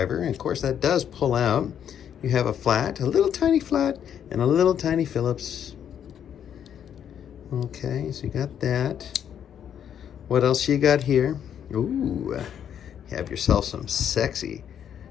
and of course that does pull out. You have a flat, a little tiny flat, and a little tiny Phillips. Okay, so you got that. What else you got here? Ooh, you have yourself some sexy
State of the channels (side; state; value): right; quieter; 9.1 dB